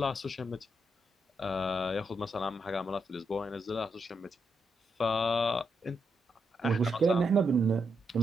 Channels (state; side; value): normal; both; correlation 0.81